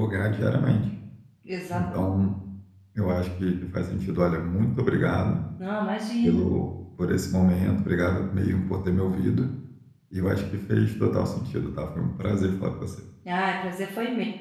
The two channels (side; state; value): both; identical; correlation 1.00